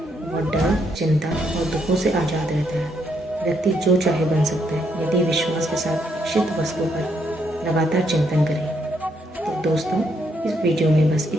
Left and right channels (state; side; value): normal; both; correlation 0.75